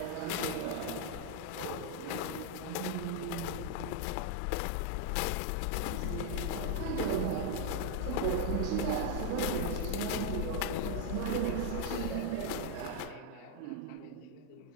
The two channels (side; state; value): both; different; correlation 0.00